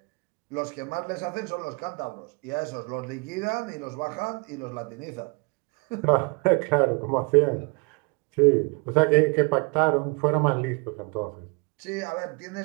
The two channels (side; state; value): left; quieter; 31.3 dB